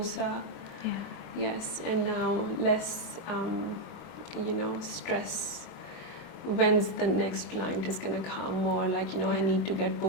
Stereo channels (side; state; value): right; late; 23 ms